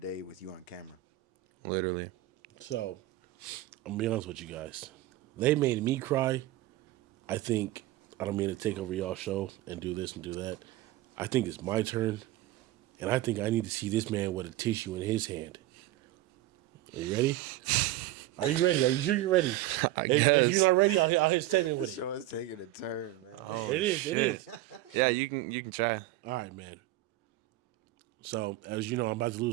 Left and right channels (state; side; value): quieter; left; 15.3 dB